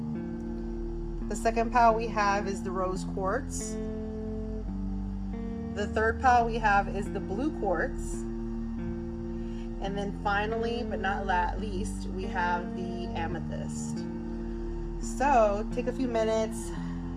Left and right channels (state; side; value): identical; both; correlation 1.00